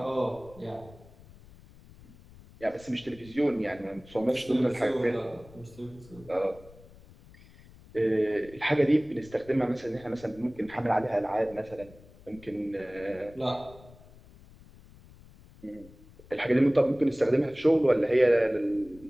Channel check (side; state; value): left; noise; rumble, 22 dB below the sound